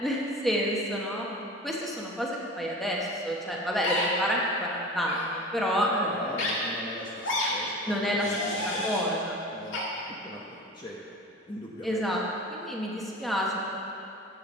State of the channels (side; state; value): both; normal; correlation 0.35